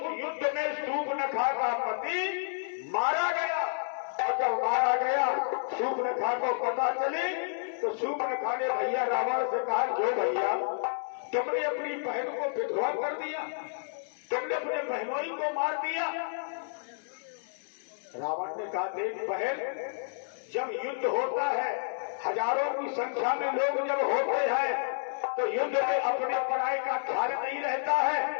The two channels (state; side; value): silent; right; digital silence